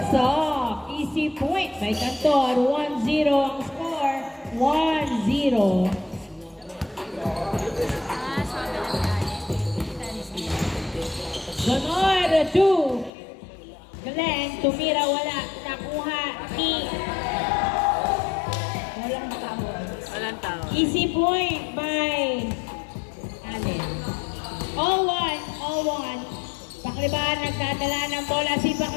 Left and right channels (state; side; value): drops out; right; at 13.1 s